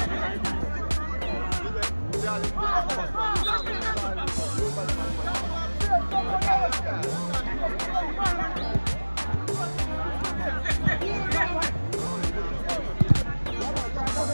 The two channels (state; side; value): inverted; both; correlation -1.00